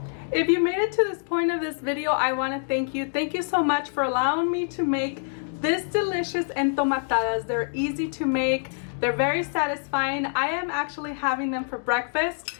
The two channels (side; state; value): right; silent; digital silence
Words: If you made it to this point of this video, I want to thank you. Thank you so much for allowing me to make this delicious entomatadas. They're easy to make. They're very satisfying. I am actually having them for breakfast.